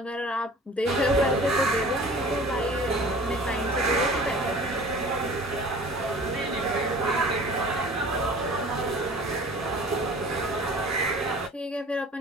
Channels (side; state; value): both; normal; correlation 0.45